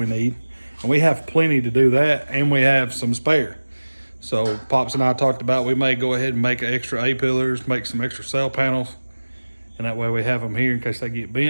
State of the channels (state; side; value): inverted; both; correlation -1.00